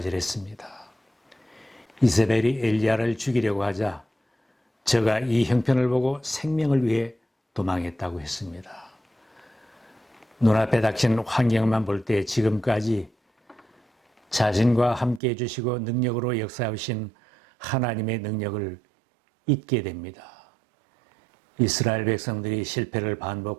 이세벨이 엘리야를 죽이려고 하자 저가 이 형편을 보고 생명을 위해 도망했다고 했습니다. 눈앞에 닥친 환경만 볼 때 지금까지 자신과 함께 해주시고 능력으로 역사하신 하나님의 능력을 잊게 됩니다. 이스라엘 백성들이 실패를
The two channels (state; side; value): drops out; left; at 15.2 s